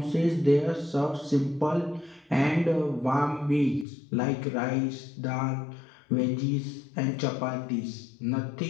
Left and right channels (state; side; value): drops out; right; at 3.9 s